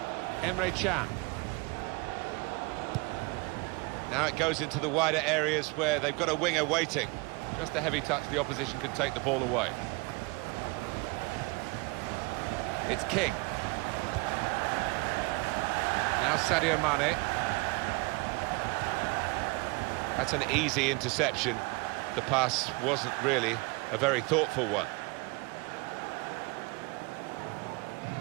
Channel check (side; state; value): left; quieter; 26.9 dB